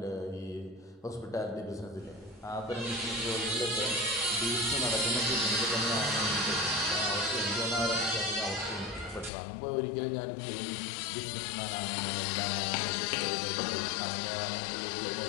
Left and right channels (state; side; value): drops out; right; at 9.3 s